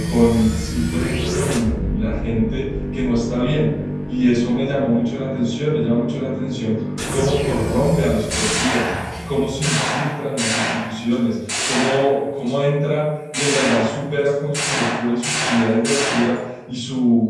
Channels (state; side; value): identical; both; correlation 1.00